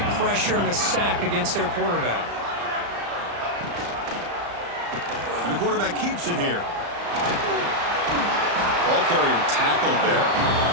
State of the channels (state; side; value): late; left; 35 ms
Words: pressure and a sack against their quarterback. And the quarterback keeps it here. Ball carrier tackled there.